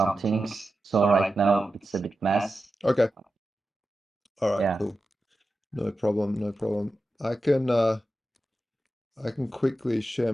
things. So right now it's a bit mess. Okay. All right, Yeah, cool. No problem, no problem. I can quickly share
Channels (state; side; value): normal; both; correlation 0.91